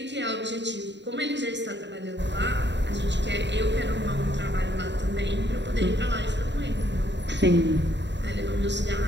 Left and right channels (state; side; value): late; left; 0.52 ms